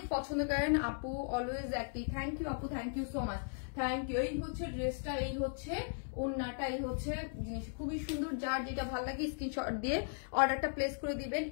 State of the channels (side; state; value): right; silent; digital silence